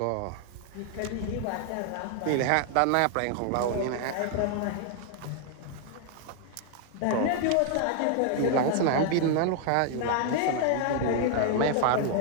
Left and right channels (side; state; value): both; different; correlation 0.00